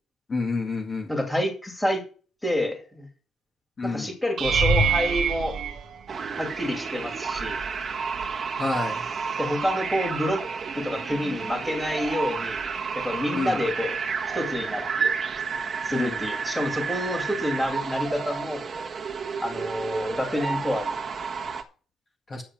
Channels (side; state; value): both; normal; correlation 0.83